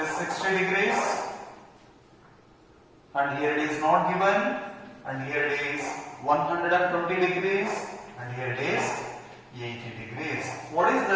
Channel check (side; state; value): both; identical; correlation 1.00